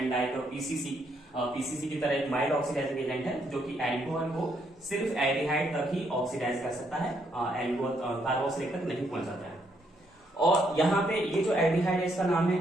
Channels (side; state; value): both; normal; correlation 0.74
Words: like PCC की तरह एक माइल्ड ऑक्सीडाइजिंग एजेंट है, जो कि एल्कोहल को सिर्फ एल्डिहाइड तक ही ऑक्सीडाइज कर सकता है, कार्बोक्सिलिक तक नहीं पहुंचाता है। और यहाँ पे ये जो एल्डिहाइड है, इसका नाम